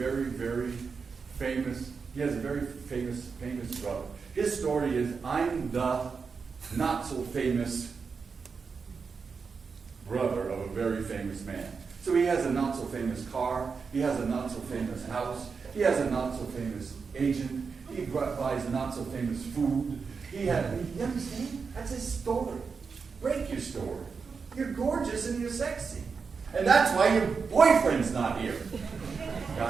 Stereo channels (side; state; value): left; quieter; 5.3 dB